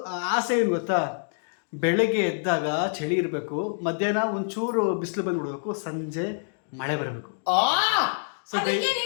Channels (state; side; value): silent; right; digital silence